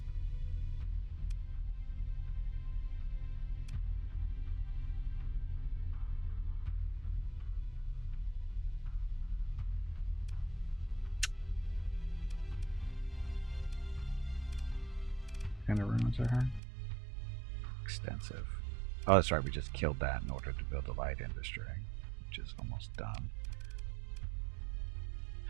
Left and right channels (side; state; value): left; drops out; at 16.6 s